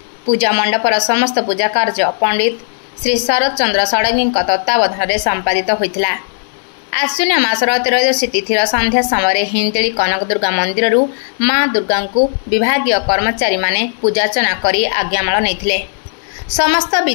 पूजा मंडपर समस्त पूजा कार्य पंडित श्री शरद चंद्र षडंगी तत्वावधान में संपादित होता। आश्विन मासर त्रयोदशी तिथिर संध्या समय हिंजिली कनक दुर्गा मंदिर मां दुर्गा को विभागीय कर्मचारी माने पूजार्चना कर आज्ञामाल नहीं। समस्त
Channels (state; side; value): silent; right; digital silence